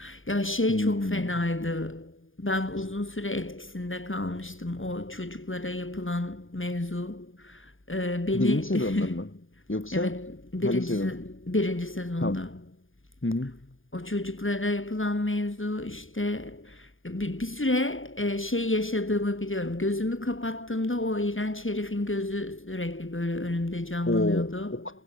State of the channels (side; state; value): right; late; 0.58 ms